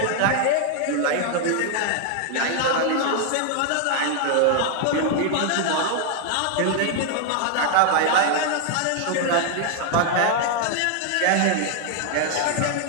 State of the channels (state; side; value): different; both; correlation 0.00